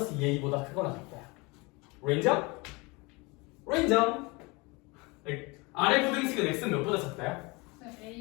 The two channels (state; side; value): quieter; right; 26.2 dB